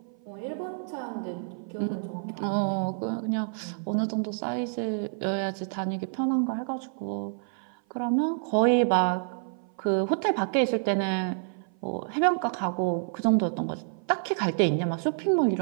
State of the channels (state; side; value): silent; left; 55 dB below the other